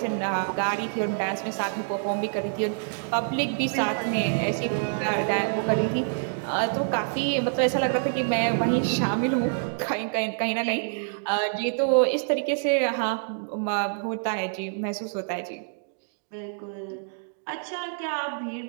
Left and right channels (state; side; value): silent; left; digital silence